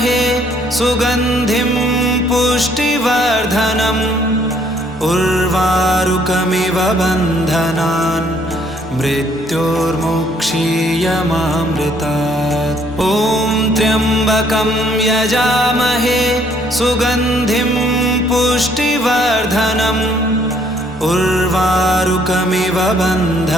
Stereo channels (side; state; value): both; normal; correlation 0.65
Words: सुगन्धिं पुष्टिवर्धनम् उर्वारुकमिव बन्धनान् मृत्योर्मुक्षीयमामृतात्। ॐ त्र्यम्बकं यजामहे सुगन्धिं पुष्टिवर्धनम् उर्वारुकमिव